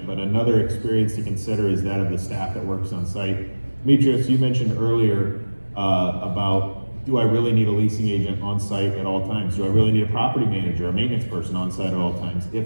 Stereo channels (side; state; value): both; inverted; correlation -1.00